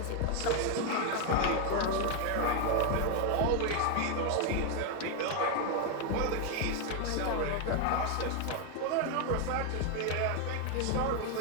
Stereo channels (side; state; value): both; different; correlation 0.01